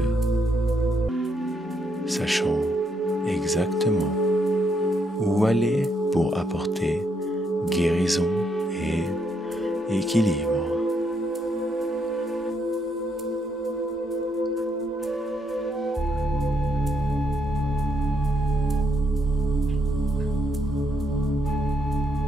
sachant exactement où aller pour apporter guérison et équilibre.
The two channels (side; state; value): both; normal; correlation 0.76